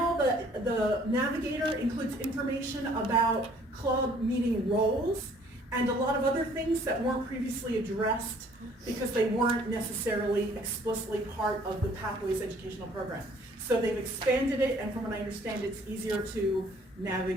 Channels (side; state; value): both; normal; correlation 0.58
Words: the Navigator includes information about club meeting roles and a lot of other things that weren't previously addressed because they weren't necessarily explicitly part of the Pathways educational program. So they've expanded it, and from what I understand, it's easier to